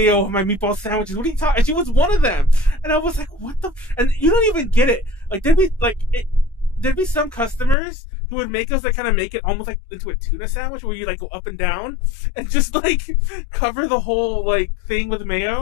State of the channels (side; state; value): right; drops out; at 7.8 s